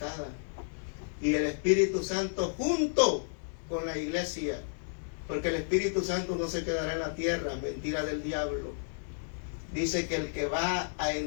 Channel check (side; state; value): right; silent; 56 dB below the other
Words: y el Espíritu Santo junto con la iglesia, porque el Espíritu Santo no se quedará en la tierra, mentira del diablo. Dice que el que va a